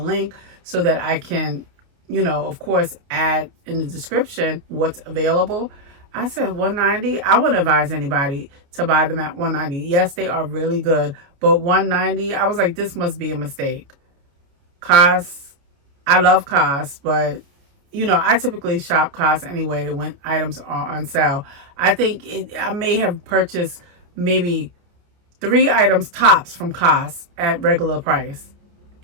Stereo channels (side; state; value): left; late; 29 ms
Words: so that I can, you know, of course, add in the description what's available. I said $190. I wouldn't advise anybody to buy them at $190. Yes, they are really good, but $190, I was like, this must be a mistake. COS, I love COS, but you know, I typically shop COS anyway when items are on sale. I think I may have purchased maybe 3 items tops from COS at regular price,